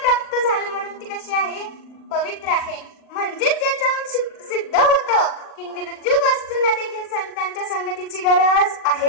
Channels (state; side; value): late; right; 40 ms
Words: प्राप्त झालं म्हणून ती कशी आहे? पवित्र आहे. म्हणजेच याच्यावरून सिद्ध होतं की निर्जीव वस्तूंना देखील संतांच्या संगतीची गरज